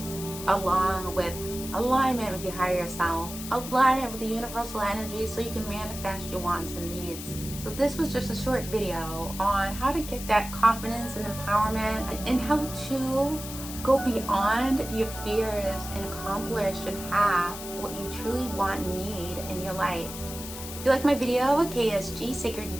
along with alignment with your higher self, alignment with the universal energy, so you can manifest your wants and needs. So this was just a short video on how to get that confidence and empowerment, and how to go beyond your fears and accomplish and have what you truly want and need in your life. If you like my video, KSG, Sacred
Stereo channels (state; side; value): noise; left; hiss, 10 dB below the sound